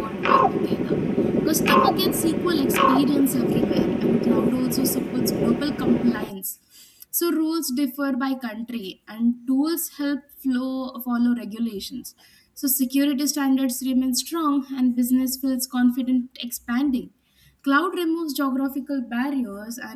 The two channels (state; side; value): identical; both; correlation 1.00